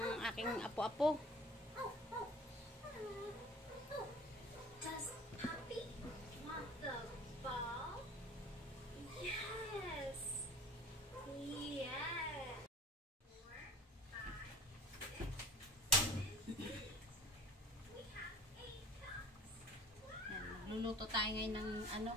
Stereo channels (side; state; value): both; normal; correlation 0.45